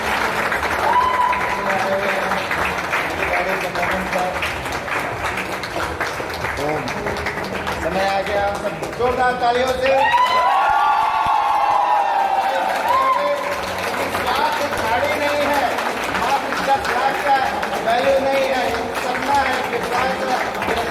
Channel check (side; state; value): both; identical; correlation 1.00